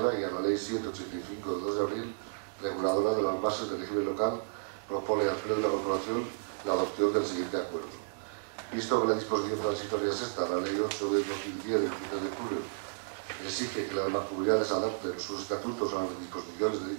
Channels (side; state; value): left; silent; 56 dB below the other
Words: y a la Ley 785 de 2 de abril, reguladora de las bases del régimen local, propone al Pleno de la Corporación la adopción del siguiente acuerdo. Visto que la disposición transitoria sexta, la Ley 8 de 2010 del 23 de julio, exige que las mancomunidades adopten sus estatutos a las disposiciones de